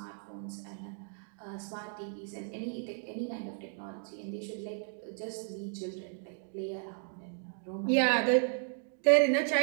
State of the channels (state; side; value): silent; left; 55 dB below the other